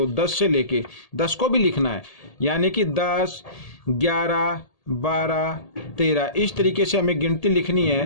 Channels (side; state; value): right; late; 1.8 ms